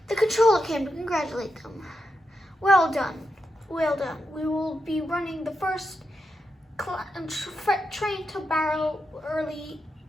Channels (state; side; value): normal; both; correlation 0.85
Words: The controller came to congratulate them. Well done, well done. We will be running the first train to Barrow early